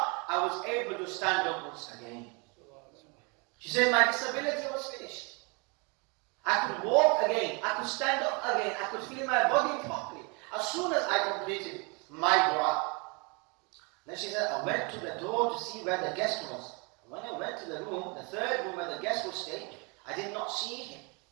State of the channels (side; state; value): left; quieter; 31.5 dB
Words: I was able to stand up once again. She said my disability was finished. I could walk again, I could stand up again, I could feel my body properly as soon as I completed my dua. Then she said, I went to the door to see where the guest was. When I went to the room, the third room where the guest would stay, I did not see him.